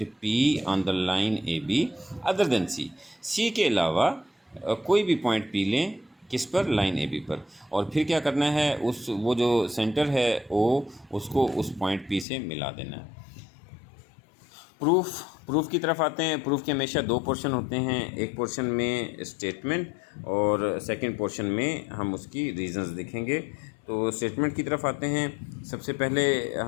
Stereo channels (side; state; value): right; drops out; at 12.2 s